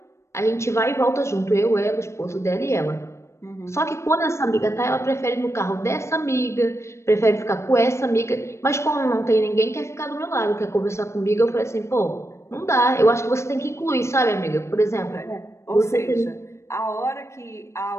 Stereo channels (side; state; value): right; late; 0.13 ms